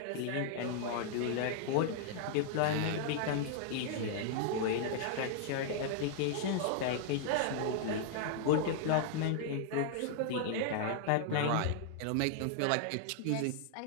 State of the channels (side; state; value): both; different; correlation -0.01